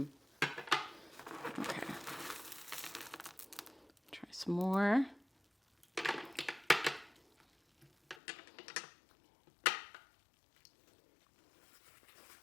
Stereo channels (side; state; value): right; drops out; at 8.2 s